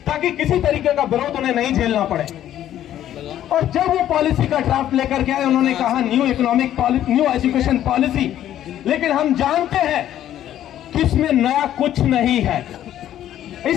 ताकि किसी तरीके का विरोध उन्हें नहीं झेलना पड़े। और जब वो पॉलिसी का ड्राफ्ट लेकर के आए, उन्होंने कहा new economic policy, new education policy. लेकिन हम जानते हैं कि इसमें नया कुछ नहीं है।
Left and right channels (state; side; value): quieter; right; 11.7 dB